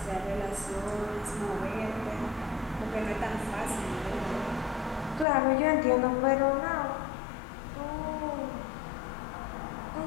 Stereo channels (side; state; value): right; drops out; at 5.2 s